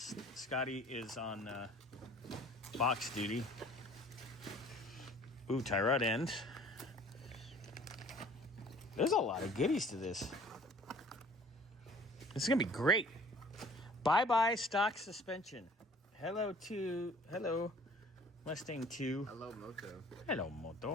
Scotty is on box duty. Ooh, tie rod end. There's a lot of goodies to this. This is gonna be great. Bye-bye stock suspension. Hello Mustang 2. Hello Moto. Hello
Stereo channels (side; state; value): both; normal; correlation 0.51